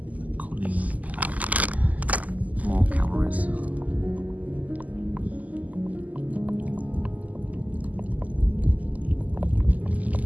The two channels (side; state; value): left; late; 0.077 ms